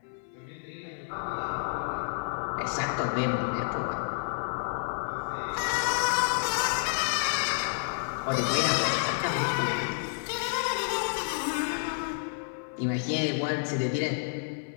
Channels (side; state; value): right; silent; 58 dB below the other